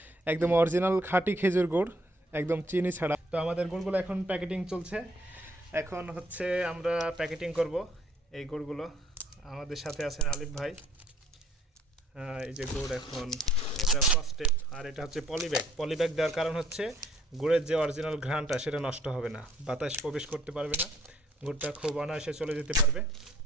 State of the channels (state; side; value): normal; both; correlation 0.64